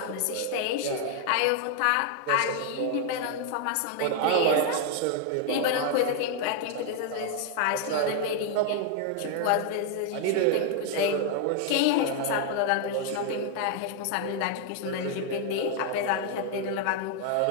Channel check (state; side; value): different; both; correlation 0.00